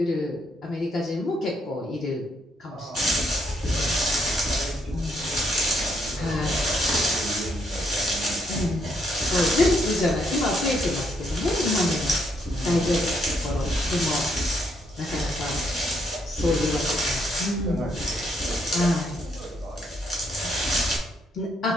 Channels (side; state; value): both; normal; correlation 0.74